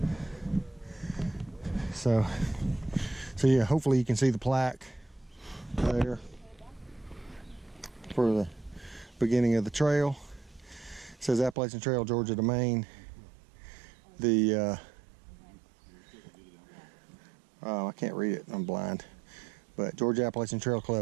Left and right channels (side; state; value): left; drops out; at 11.6 s